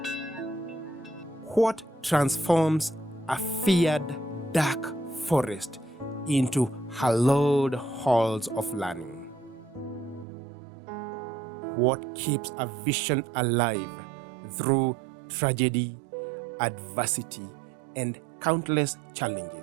What transforms a feared dark forest into hallowed halls of learning? What keeps a vision alive through tragedy, adversity, and countless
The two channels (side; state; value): left; drops out; at 10.2 s